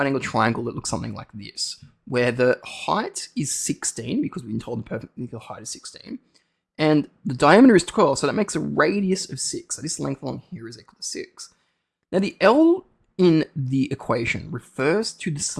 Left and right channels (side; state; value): both; identical; correlation 1.00